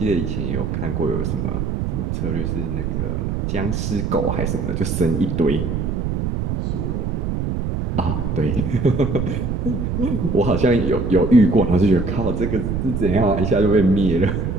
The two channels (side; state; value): right; noise; rumble, 1 dB below the sound